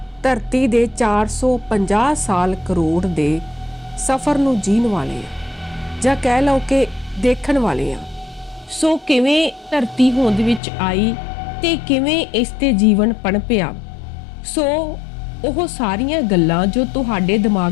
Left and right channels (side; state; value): right; drops out; at 10.6 s